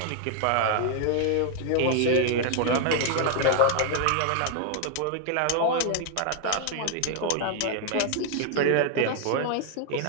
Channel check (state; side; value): different; both; correlation 0.00